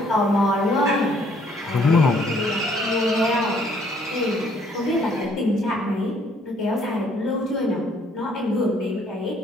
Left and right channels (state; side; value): normal; both; correlation 0.64